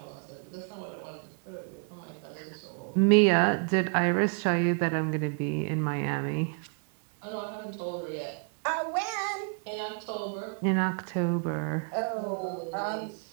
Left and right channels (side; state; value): left; quieter; 39.8 dB